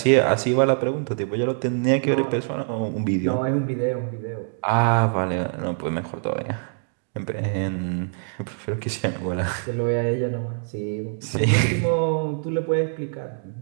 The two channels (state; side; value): silent; left; digital silence